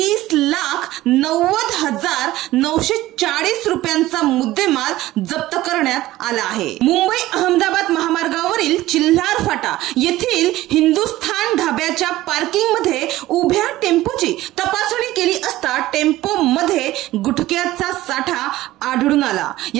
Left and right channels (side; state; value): left; quieter; 16.3 dB